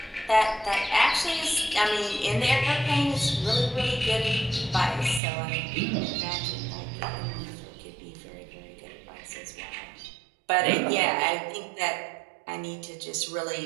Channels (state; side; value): drops out; left; at 5.2 s